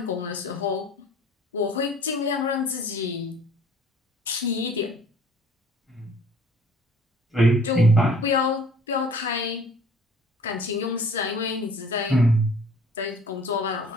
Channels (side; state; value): both; normal; correlation 0.52